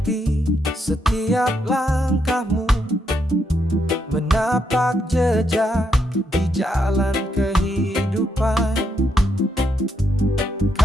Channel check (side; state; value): both; normal; correlation 0.78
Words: setiap langkahmu, menapak jejak di jalan kehidupan.